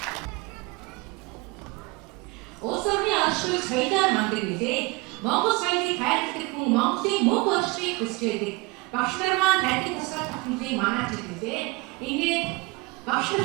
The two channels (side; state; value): left; quieter; 25.0 dB